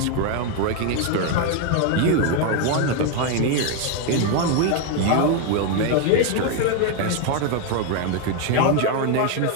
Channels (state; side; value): different; both; correlation 0.01